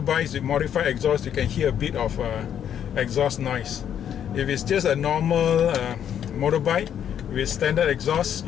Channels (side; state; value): right; quieter; 9.3 dB